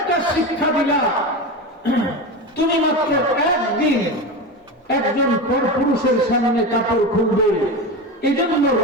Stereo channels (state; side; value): normal; both; correlation 0.22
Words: শিক্ষা দিলা, তুমি মাত্র একদিন একজন পরপুরুষের সামনে কাপড় খুলবে, এজন্য